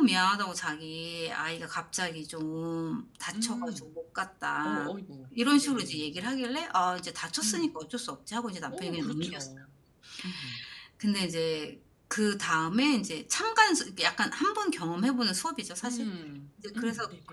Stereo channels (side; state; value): both; identical; correlation 1.00